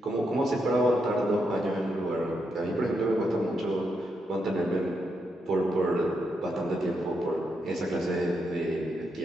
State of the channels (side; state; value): both; normal; correlation 0.82